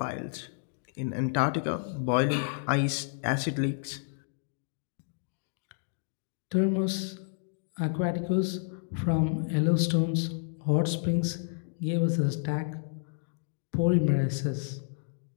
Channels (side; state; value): right; silent; digital silence